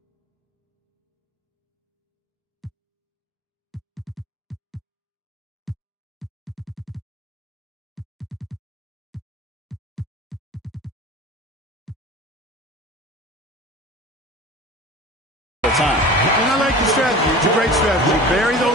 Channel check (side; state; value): both; normal; correlation 0.37